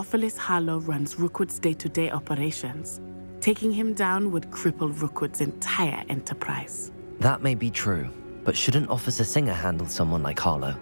Harlow runs Rookwood's day-to-day operations. Taking him down would cripple Rookwood's entire enterprise. That may be true, but shouldn't Officer Singer handle someone like Harlow?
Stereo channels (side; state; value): both; inverted; correlation -1.00